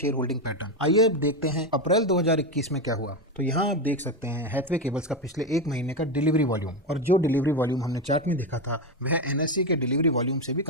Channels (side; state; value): both; normal; correlation 0.12